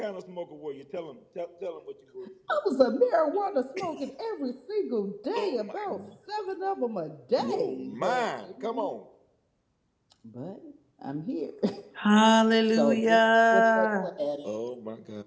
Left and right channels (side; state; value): both; identical; correlation 1.00